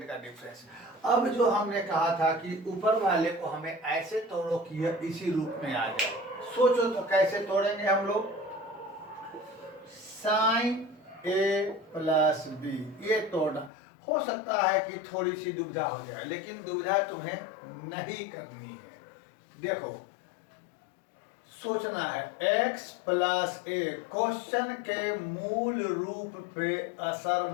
का डिफरेंस। अब जो हमने कहा था कि ऊपर वाले को हमें ऐसे तोड़ो कि यह इसी रूप में आ जाए। सोचो तो कैसे तोड़ेंगे हम लोग। साइन ए प्लस बी, ये तोड़ना हो सकता है कि थोड़ी सी दुविधा हो जाए, लेकिन दुविधा तुम्हें नहीं करनी है। देखो सोचना है, x प्लस ए क्वेश्चन के मूल रूप पे असर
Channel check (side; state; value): right; drops out; at 13.7 s